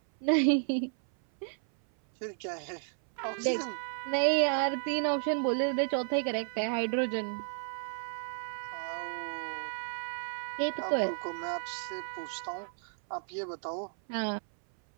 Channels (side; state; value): left; silent; 56 dB below the other